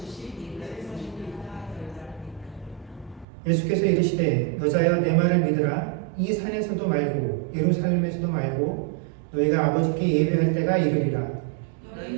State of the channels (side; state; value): left; drops out; at 3.2 s